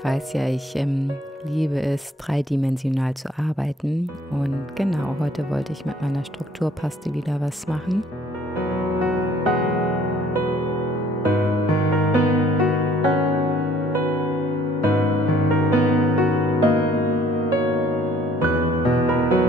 weiß ja, ich liebe es, dreidimensional zu arbeiten. Und genau, heute wollte ich mit meiner Strukturpaste wieder was machen.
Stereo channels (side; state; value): both; normal; correlation 0.59